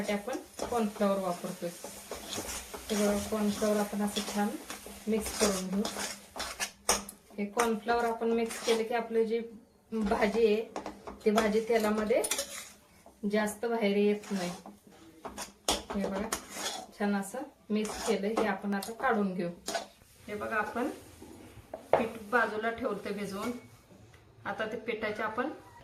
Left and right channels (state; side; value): identical; both; correlation 1.00